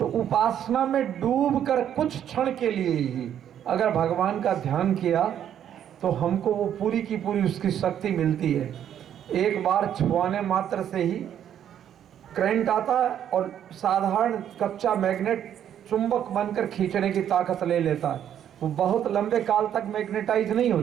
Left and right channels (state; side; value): quieter; left; 9.9 dB